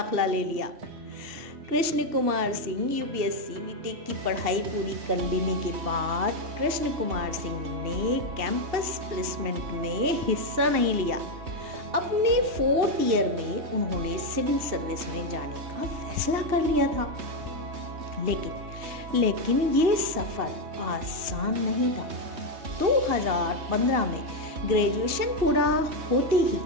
ले लिया। कृष्ण कुमार सिंह यूपीएससी बीटेक की पढ़ाई पूरी कर लेने के बाद कृष्ण कुमार सिंह ने कैंपस प्लेसमेंट में हिस्सा नहीं लिया। अपने 4th ईयर में उन्होंने सिविल सर्विस में जाने का फैसला कर लिया था, लेकिन ये सफ़र आसान नहीं था। 2015 में ग्रेजुएशन पूरा होते ही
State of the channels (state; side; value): late; left; 2.7 ms